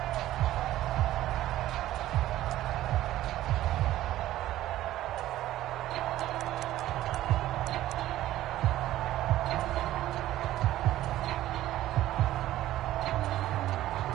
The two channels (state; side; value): quieter; left; 14.3 dB